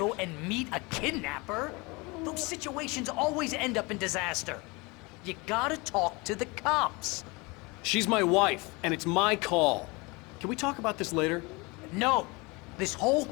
and meet a kidnapper. Those situations always end up in disaster. You gotta talk to the cops. She's my wife, and it's my call. Can we talk about this later? No, this whole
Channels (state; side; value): quieter; right; 26.2 dB